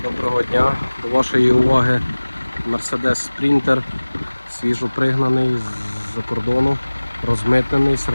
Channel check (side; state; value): both; inverted; correlation -1.00